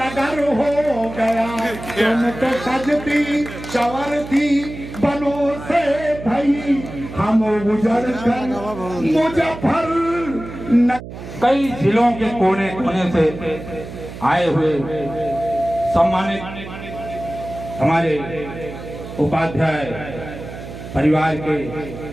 हो गया। तुम तो सजती संवरती बनो से भाई, हम उजड़ कर मुजफ्फर नगर। कई जिलों के कोने कोने से आए हुए सम्मानित हमारे उपाध्याय परिवार के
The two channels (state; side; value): noise; right; hum, 12 dB below the sound